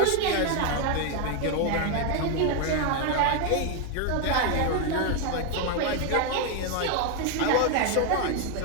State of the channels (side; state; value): both; different; correlation 0.01